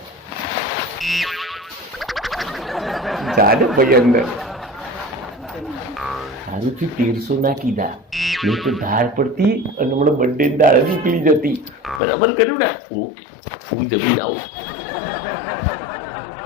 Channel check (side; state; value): right; drops out; at 12.0 s